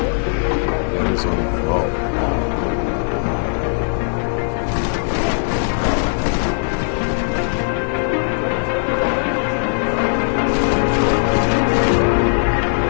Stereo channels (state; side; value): silent; right; 65 dB below the other